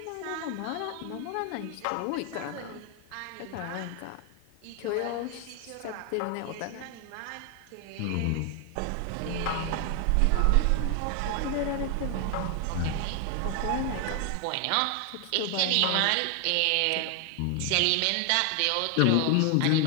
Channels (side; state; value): both; different; correlation 0.01